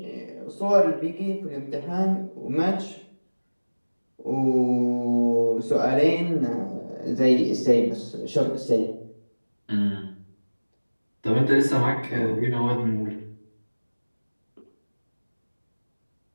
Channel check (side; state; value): both; inverted; correlation -1.00